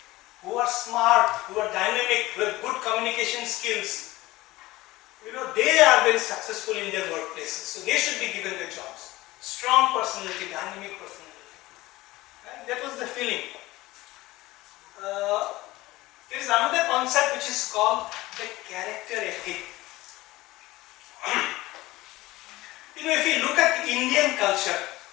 who are smart, who are dynamic, who have good communication skills, they are very successful in their workplaces. So they should be given the jobs. Strong personality, dynamic personality. Right? That was the feeling. There is another concept which is called the character ethic. If you look at Indian culture,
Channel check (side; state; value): right; quieter; 18.7 dB